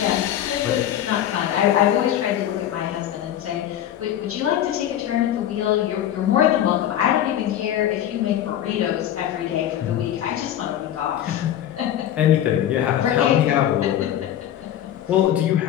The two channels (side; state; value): right; quieter; 11.3 dB